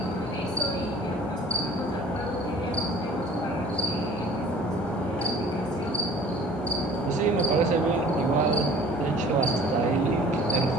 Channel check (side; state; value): both; normal; correlation 0.49